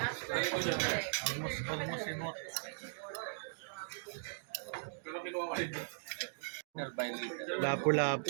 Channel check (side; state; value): left; silent; digital silence